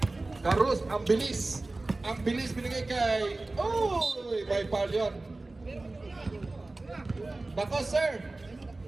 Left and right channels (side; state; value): left; quieter; 3.1 dB